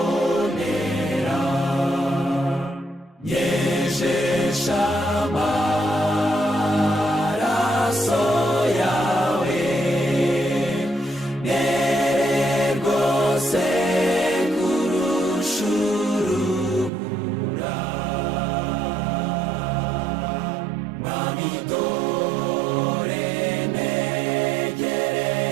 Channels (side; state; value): left; drops out; at 16.9 s